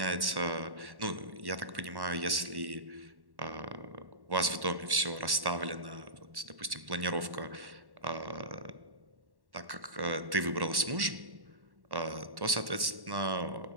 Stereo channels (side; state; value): left; late; 1.1 ms